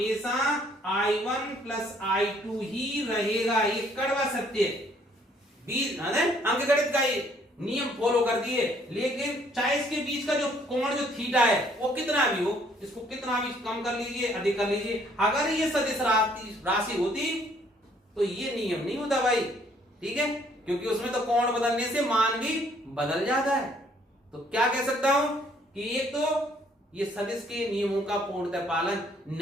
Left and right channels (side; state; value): both; normal; correlation 0.63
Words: I1 प्लस I2 ही रहेगा। ये कड़वा सत्य है, बीज अंकगणित का ये नियम फॉलो कर दिए। लेकिन चाहे इसके बीच का जो कोण जो थीटा है वो कितना भी हो, इसको कितना भी कम कर लीजिए, अधिक कर लीजिए, अगर ये सदिश राशि होती तो ये नियम नहीं होता भाई, ठीक है, क्योंकि उसमें तो कोण बदलने से मान भी बदल जाता है। तो क्या कह सकता हूं कि एक तो ये सदिश के नियमों का पूर्णतः पालन